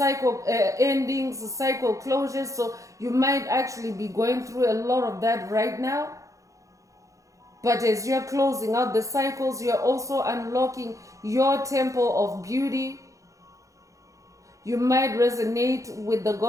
endings, cycle closures. So you might actually be going through a lot of that right now. But as you're closing out the cycles, you're also unlocking your temple of beauty. You might resonate with the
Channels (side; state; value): left; late; 0.16 ms